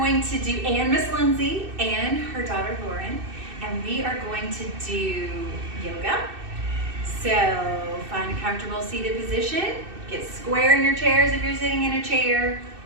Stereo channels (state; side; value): late; left; 2.6 ms